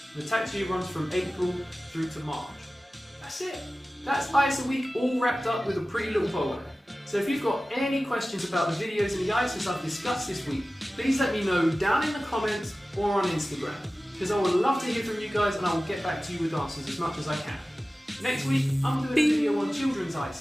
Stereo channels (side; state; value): both; normal; correlation 0.96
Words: The tax year runs from April through to March. That's it. That's ISA week all wrapped up with a pretty little bow on it. So if you've got any questions about the videos and the ISIs I've discussed this week, please let me know down in the comments or on Instagram, because I would love to hear from you guys and I will get back to you with answers as much as I can. Next week, I'm doing a video on children's